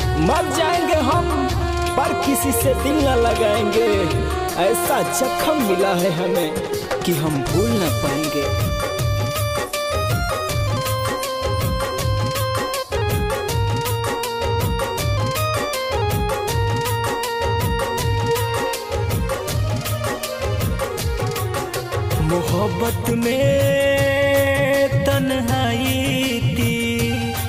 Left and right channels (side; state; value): both; identical; correlation 1.00